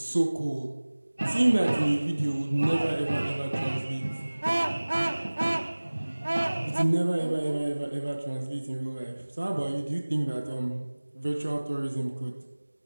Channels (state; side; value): inverted; both; correlation -1.00